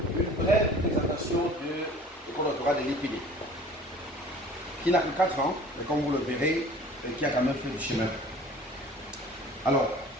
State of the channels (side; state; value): both; normal; correlation 0.47